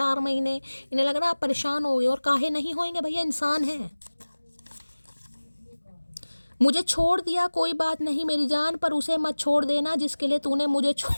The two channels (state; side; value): inverted; both; correlation -1.00